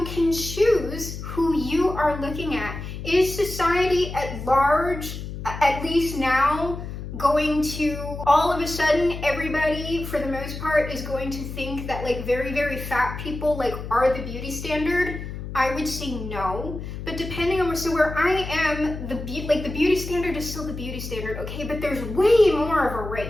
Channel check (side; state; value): left; noise; hum, 8 dB below the sound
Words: can choose who you are looking at. Is society at large, at least now, going to all of a sudden everybody for the most part is going to think that like very, very fat people are the beauty standard? I would say no, but depending on where I am, the beauty standard is still the beauty standard, okay? But there's way more of a